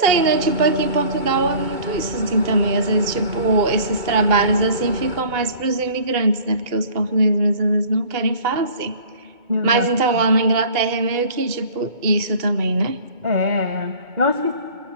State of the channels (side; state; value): left; late; 2.2 ms